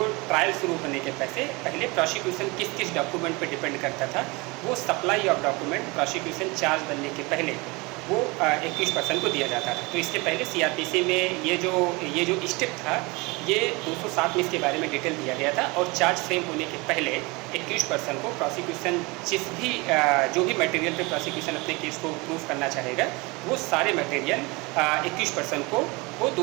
ट्रायल शुरू होने के पहले प्रोसिक्यूशन किस किस डॉक्यूमेंट पर डिपेंड करता था, वो supply of document prosecution charge बनने के पहले वो एक्यूज पर्सन को दिया जाता था। तो इसके पहले सीआरपीसी में ये जो स्टेप था, ये 207 में इसके बारे में डिटेल दिया गया था और चार्ज फ्रेम होने के पहले एक्यूज पर्सन को प्रोसिक्यूशन जो भी मटेरियल पे प्रोसिक्यूशन अपने केस को प्रूव करना चाहेगा, वो सारे मटेरियल एक्यूज पर्सन को वो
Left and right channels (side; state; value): left; quieter; 25.7 dB